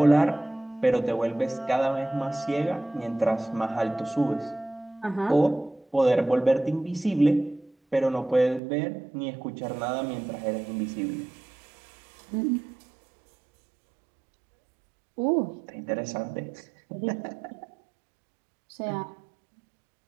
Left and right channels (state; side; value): drops out; left; at 8.6 s